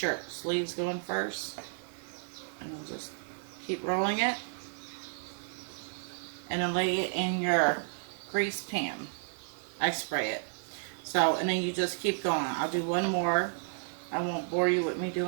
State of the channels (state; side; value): silent; left; digital silence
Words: Sleeves going first. And then just keep rolling it. And then lay it in your grease pan. I spray it. So, and then you just keep going. I'll do one more. I won't bore you with me